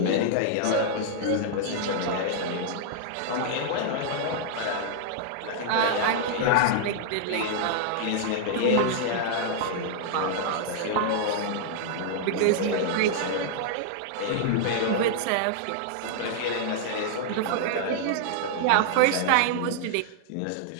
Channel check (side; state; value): both; different; correlation -0.01